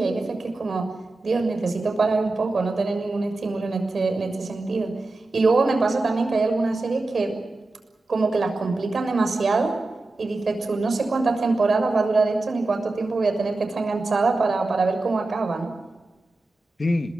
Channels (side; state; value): left; quieter; 3.1 dB